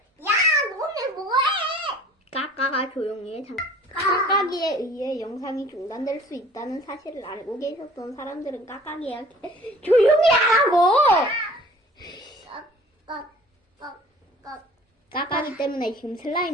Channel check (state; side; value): normal; both; correlation 0.49